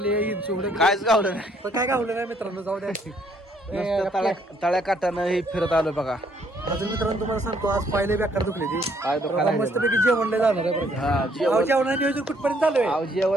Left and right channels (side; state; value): both; normal; correlation 0.67